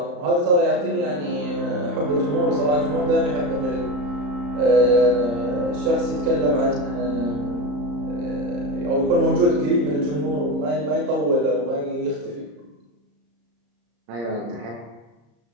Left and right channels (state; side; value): late; left; 34 ms